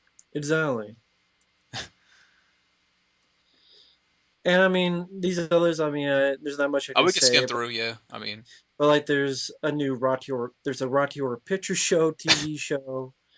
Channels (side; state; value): both; identical; correlation 1.00